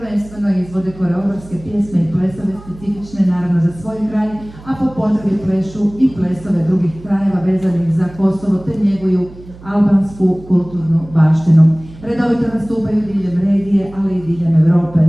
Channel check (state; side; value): noise; right; hum, 19 dB below the sound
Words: izvode koreografske pjesme i plesove specifične naravno za svoj kraj, a po potrebi plešu i plesove drugih krajeva vezanih za Kosovo te njeguju albansku kulturnu baštinu. Redovito nastupaju diljem regije, ali i diljem Europe.